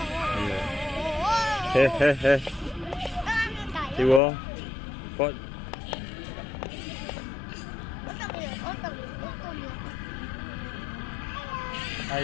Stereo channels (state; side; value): drops out; right; at 4.2 s